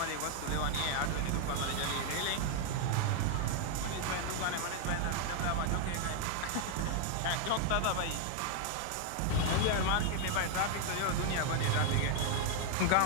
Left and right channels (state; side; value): different; both; correlation 0.00